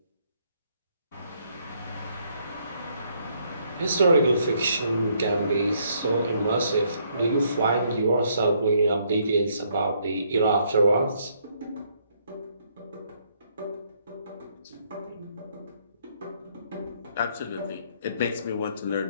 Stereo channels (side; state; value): both; inverted; correlation -0.70